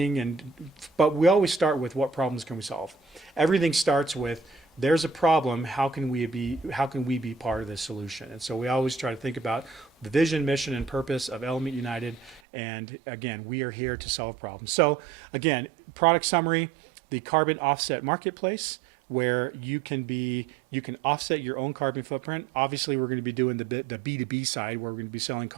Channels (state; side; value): drops out; left; at 12.4 s